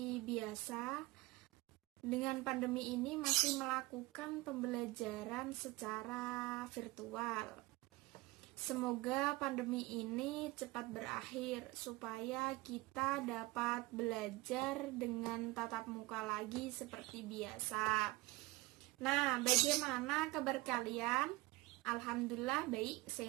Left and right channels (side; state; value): left; quieter; 20.5 dB